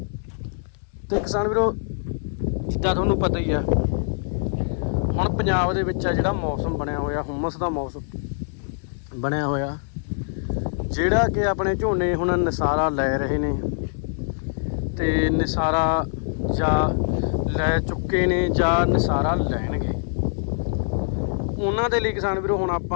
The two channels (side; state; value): right; silent; digital silence